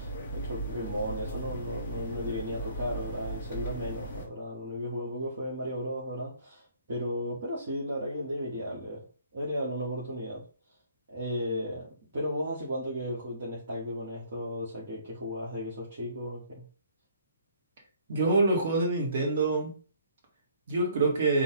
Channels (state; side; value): inverted; both; correlation -0.59